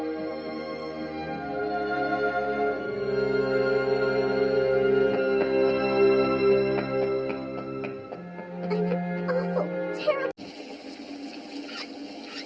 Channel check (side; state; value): both; identical; correlation 1.00